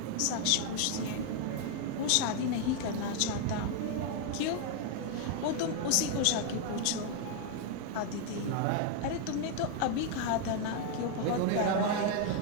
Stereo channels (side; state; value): both; different; correlation 0.01